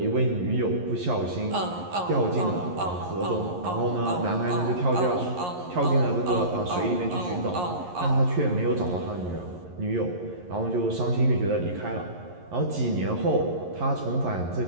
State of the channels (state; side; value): late; left; 11 ms